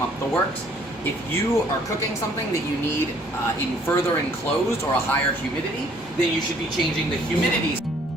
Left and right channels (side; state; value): both; normal; correlation 0.61